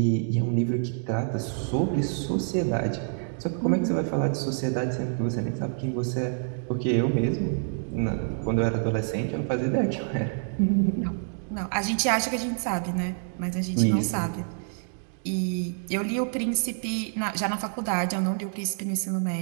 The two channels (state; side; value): silent; left; digital silence